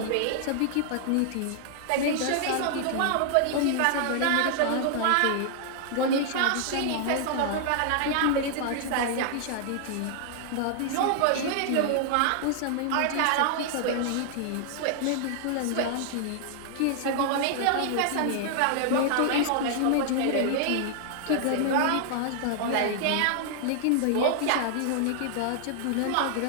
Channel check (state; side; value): different; both; correlation -0.01